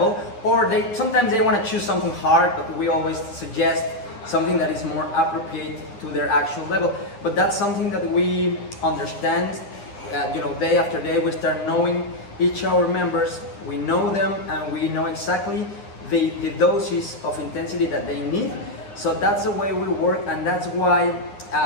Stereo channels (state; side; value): late; right; 9.9 ms